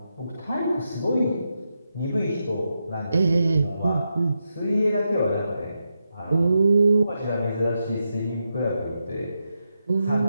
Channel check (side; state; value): both; inverted; correlation -0.86